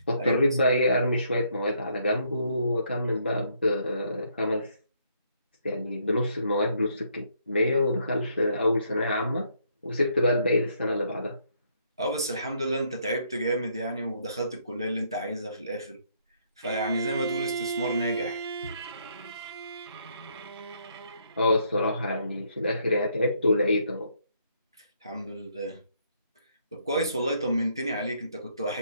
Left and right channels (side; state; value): both; inverted; correlation -0.71